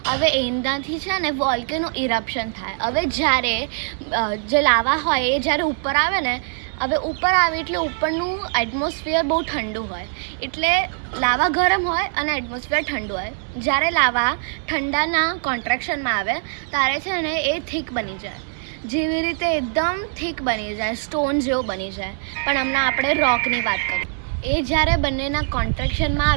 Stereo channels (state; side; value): silent; left; digital silence